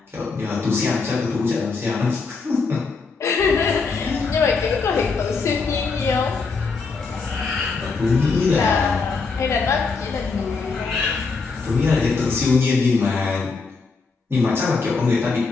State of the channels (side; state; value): right; quieter; 4.5 dB